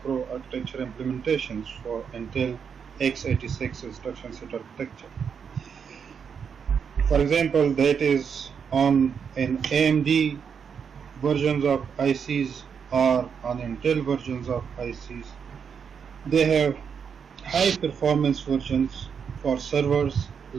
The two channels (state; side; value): quieter; left; 6.8 dB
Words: implementations for Intel x86 instruction set architecture. For example, that is on an AMD versions of ICs or on Intel versions of ICs. They have high performance versions. For servers,